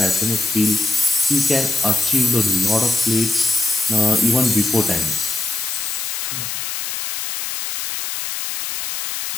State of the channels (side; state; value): left; noise; hiss, 4 dB below the sound